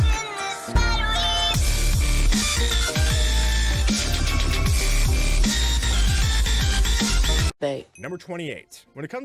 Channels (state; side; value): identical; both; correlation 1.00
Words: Number 28. When it